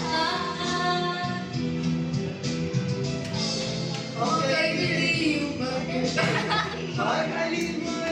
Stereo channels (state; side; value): identical; both; correlation 1.00